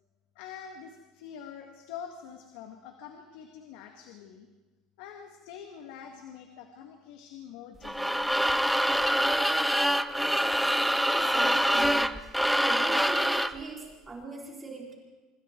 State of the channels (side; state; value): both; normal; correlation 0.96